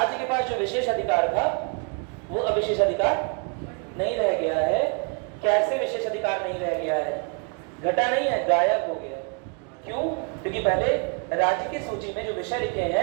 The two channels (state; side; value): quieter; left; 35.8 dB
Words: के पास जो विशेष अधिकार था वो अविशेष अधिकार नहीं रह गया है। कैसे विशेष अधिकार नहीं रह गया है? घटा नहीं है, गायब हो गया। क्यों? क्योंकि पहले राज्य की सूची में जो विषय लिखे